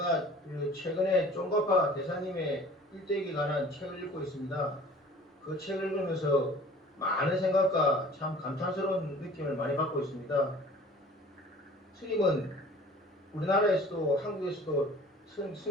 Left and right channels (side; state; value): both; normal; correlation 0.47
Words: 그 최근에 쫑가파 대사님의 일대기에 관한 책을 읽고 있습니다. 그 책을 읽으면서 많은 생각과 참 감탄스러운 느낌을 많이 받고 있습니다. 스님은 우리나라에서도 한국에서도